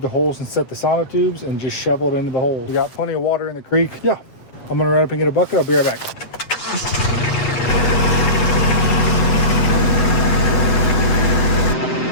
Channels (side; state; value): right; late; 7.8 ms